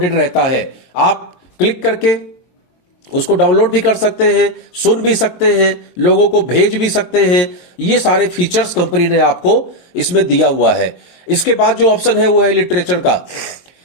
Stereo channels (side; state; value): right; late; 23 ms